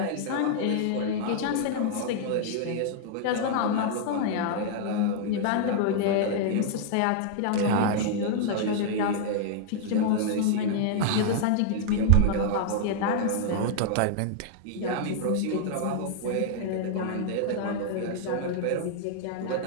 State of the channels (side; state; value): both; different; correlation -0.01